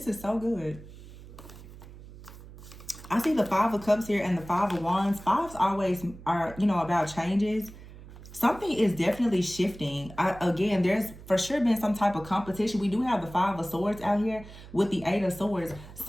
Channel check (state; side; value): noise; right; hum, 17 dB below the sound